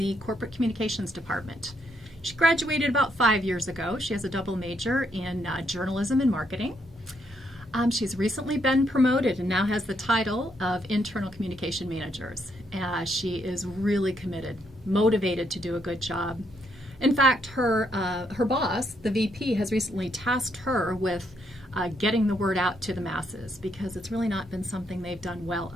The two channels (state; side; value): normal; both; correlation 0.75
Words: corporate communications department. She graduated about 5 years ago. She has a double major in journalism and marketing. She's recently been promoted and now has the title of Internal Communication Managers. She is really committed, motivated to do a good job. In fact, her boss, the VP, has recently tasked her with getting the word out to the masses because it's really not been something they've done well